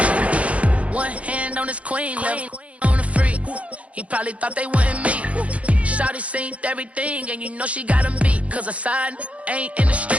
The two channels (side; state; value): left; late; 0.064 ms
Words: One hand on his queen, left on the freak. He probably thought they wouldn't meet. Shawty seen everything, and you know she got him beat. Cause a side ain't in the